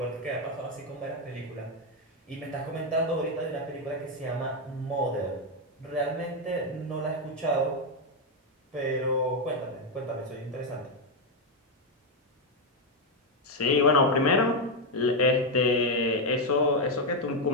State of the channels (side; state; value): both; normal; correlation 0.04